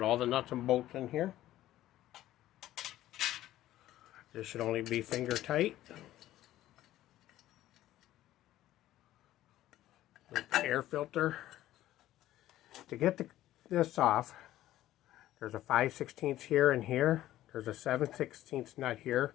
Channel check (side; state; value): right; quieter; 14.2 dB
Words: all the nuts and bolts in here. This should only be finger tight. With the air filter. To get this off, there's a 5/16 here and here. There's a 7/16 nut here